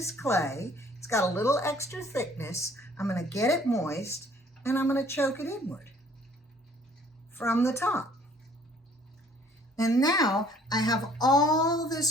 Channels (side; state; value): both; normal; correlation 0.57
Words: clay. It's got a little extra thickness. I'm going to get it moist, and I'm going to choke it inward from the top. And now I have all